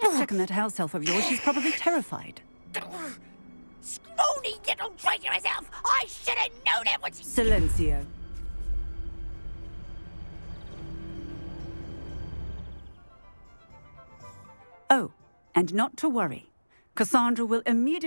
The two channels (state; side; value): inverted; both; correlation -1.00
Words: on that house elf of yours. She's probably terrified. Scrawny little traitor herself! I should have known it was... Silencio. Oh, and not to worry. Cassandra will